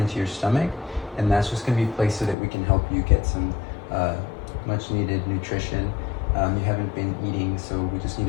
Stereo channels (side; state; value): right; drops out; at 2.4 s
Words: your stomach, and that's just going to be placed so that we can help you get some much needed nutrition. You haven't been eating, so we just need